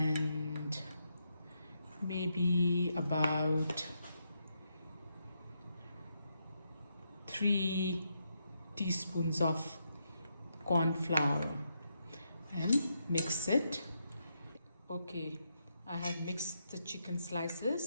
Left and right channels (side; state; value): both; inverted; correlation -0.81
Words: maybe about 3 teaspoons of corn flour and mix it. Okay, I have mixed the chicken